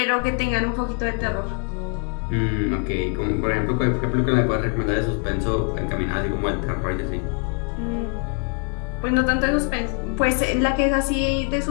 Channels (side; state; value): right; quieter; 37.0 dB